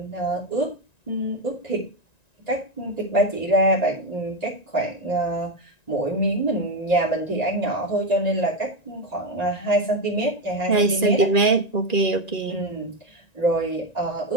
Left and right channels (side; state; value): right; late; 1.9 ms